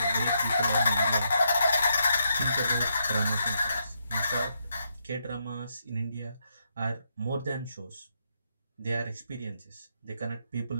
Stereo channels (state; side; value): inverted; both; correlation -0.79